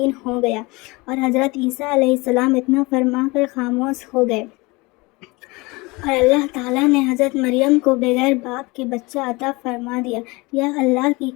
ہو گیا، اور حضرت عیسیٰ علیہ السلام اتنا فرما کر خاموش ہو گئے، اور اللہ تعالیٰ نے حضرت مریم کو بغیر باپ کے بچہ عطا فرما دیا۔ یہ اللہ کی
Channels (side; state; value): right; quieter; 24.4 dB